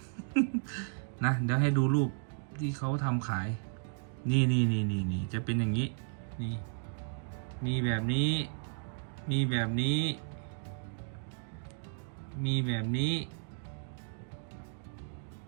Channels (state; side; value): silent; left; digital silence